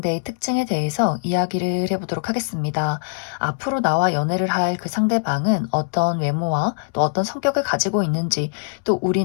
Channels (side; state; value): right; silent; 64 dB below the other